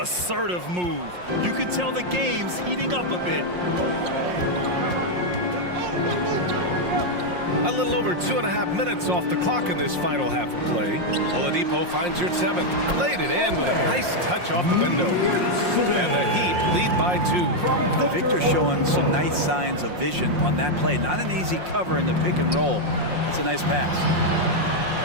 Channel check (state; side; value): late; left; 5.6 ms